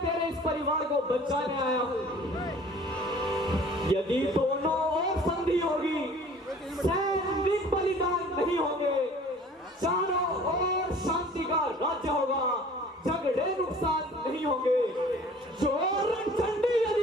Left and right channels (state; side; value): normal; both; correlation 0.49